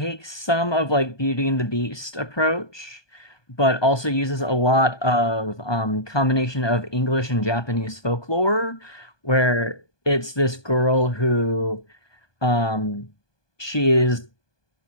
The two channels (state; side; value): late; right; 1.2 ms